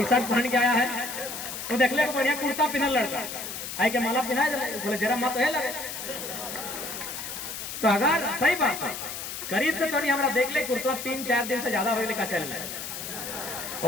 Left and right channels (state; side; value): noise; left; hiss, 7 dB below the sound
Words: शर्ट पहन के आया है तो देख ले बढ़िया कुर्ता पहनल लड़का आई के माला पिन्हा दे बोले जरा मत है लगे। तो अगर सही बात है करीब से तो नहीं हमारा देख ले कुर्ता 3-4 दिन से ज्यादा हो लेकर चल रहा है।